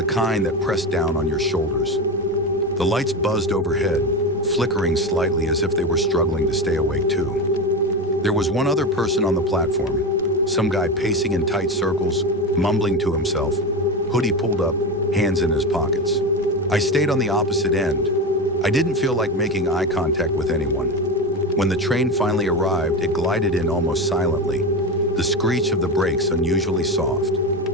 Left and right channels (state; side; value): normal; both; correlation 0.20